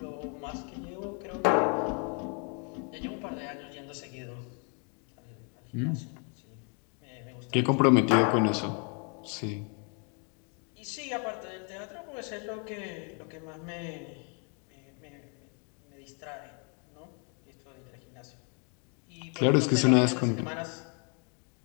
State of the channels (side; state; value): right; quieter; 38.2 dB